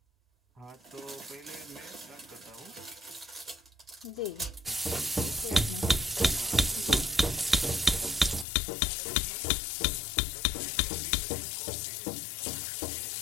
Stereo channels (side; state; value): right; drops out; at 8.5 s